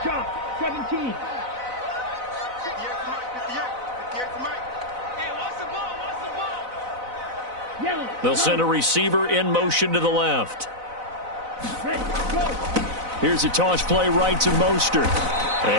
Chop. 17. 58 to Mike. Hey, what's the ball? Yellow. They'll send a receiver in motion to the left. Ready. Go. Here's a toss play right to Mostert.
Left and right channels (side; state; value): left; late; 4.0 ms